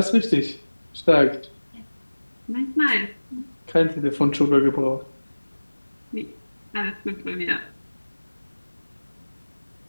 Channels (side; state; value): both; inverted; correlation -1.00